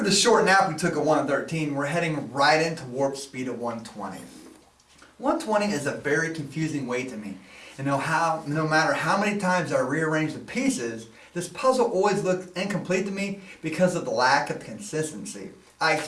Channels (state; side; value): identical; both; correlation 1.00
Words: the short nap we took at 113, we're heading right into warp speed at 120. 120 is a very confusing weight to me. And no matter how many times I rearrange the pieces, this puzzle always looks incomplete to me because of the lack of consistency. I